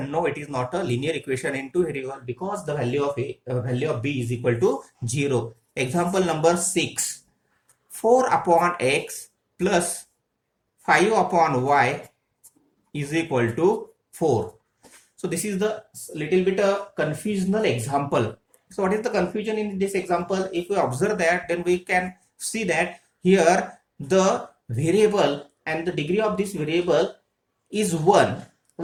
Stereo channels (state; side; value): identical; both; correlation 1.00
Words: No, it is not a linear equation in two variable because the value of b is equal to 0. Example number 6: 4 upon x plus 5 upon y is equal to 4. So this is the little bit a confusional example. So what is the confusion in this example? If we observe that, then we can see that here the variable and the degree of this variable is 1.